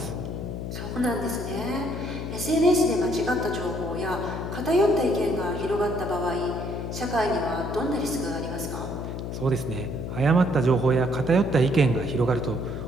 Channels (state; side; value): noise; left; hum, 5 dB below the sound